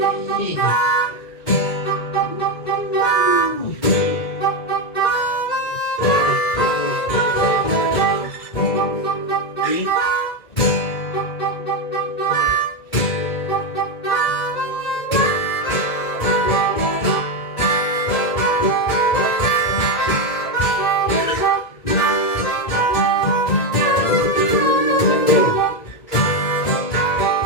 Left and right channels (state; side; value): late; right; 1.9 ms